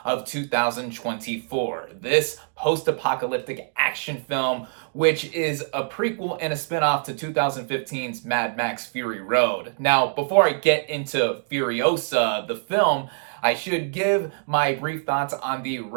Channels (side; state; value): left; silent; digital silence